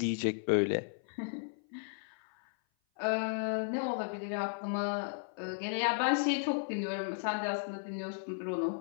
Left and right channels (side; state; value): right; silent; 55 dB below the other